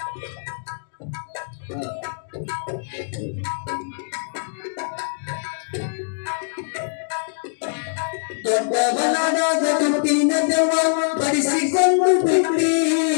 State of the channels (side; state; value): right; silent; digital silence